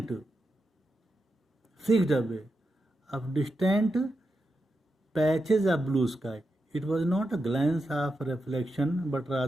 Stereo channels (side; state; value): both; normal; correlation 0.87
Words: fixed away, of distant patches of blue sky. It was not a glance of reflection, but